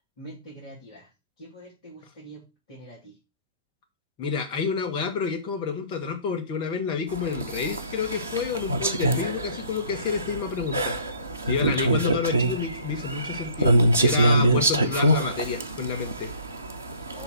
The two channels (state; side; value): inverted; both; correlation -0.53